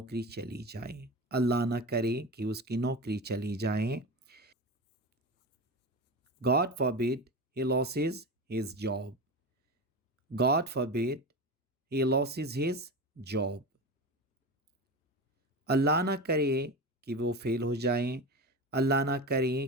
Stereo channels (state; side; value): normal; both; correlation 0.25